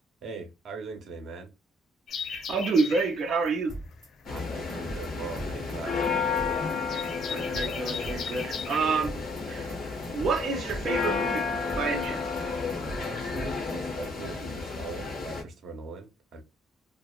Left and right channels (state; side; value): normal; both; correlation 0.64